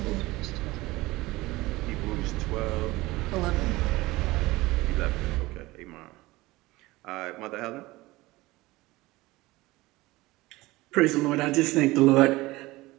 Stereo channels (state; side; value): quieter; left; 19.9 dB